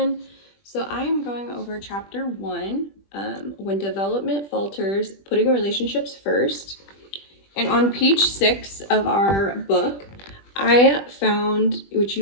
So I'm going over chapter 1, when development falters, putting relationships first. And on page 6 of our book, I found, which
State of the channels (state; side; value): late; right; 20 ms